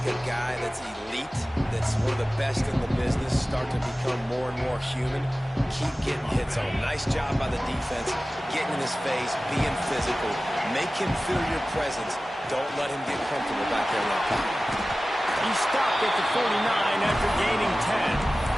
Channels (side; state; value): both; normal; correlation 0.96